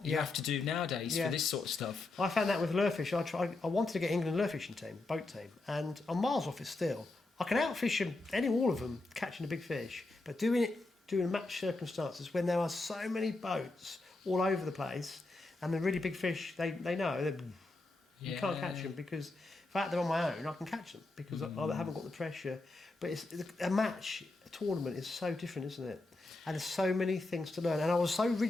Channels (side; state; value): right; quieter; 3.1 dB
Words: you have to do nowadays for this sort of stuff. I found that with lure-fish. I wanted to get England lure fishing team, boat team, and I'm miles off it still. I can outfish them, all of them, catching a big fish, but doing match circumstances when there are so many boats all over the place, and the really big fish, they know you can't catch them because if I had them on my own, I can catch them because I haven't got the pressure. But a tournament is so different, isn't it? And there's so many things to learn. And I was so